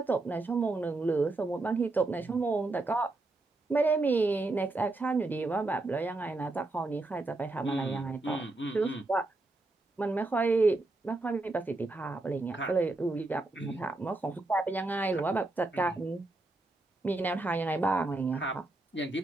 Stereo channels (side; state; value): left; quieter; 3.0 dB